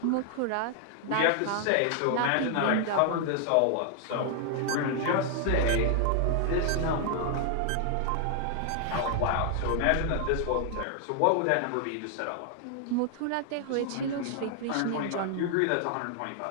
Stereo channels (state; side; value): different; both; correlation 0.00